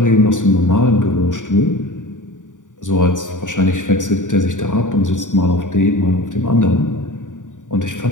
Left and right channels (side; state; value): right; late; 0.87 ms